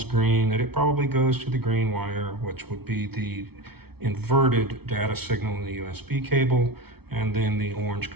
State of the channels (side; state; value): left; late; 0.97 ms